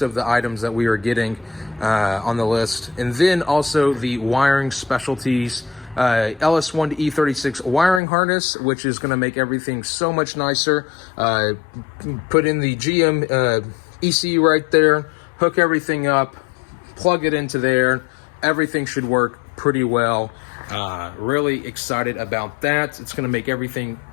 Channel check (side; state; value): right; drops out; at 8.0 s